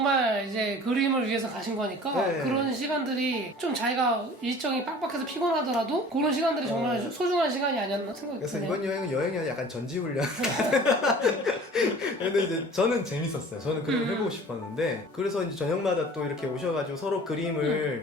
이제 그림을 위해서 가신 거니까 네. 그런 시간들이 좀 자기가 일정이 빡빡해서 피곤하더라도 그런 시간들이 정말 소중한 시간이 아니었나 생각이 그래서 드네요. 이번 여행이 아니라 약간 전지훈련 근데 이제 저는 재밌었어요. 저는 그림을 해보고 싶었는데 그래서 이제 저녁마다 또 이렇게 오셔가지고 서로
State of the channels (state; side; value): normal; both; correlation 0.45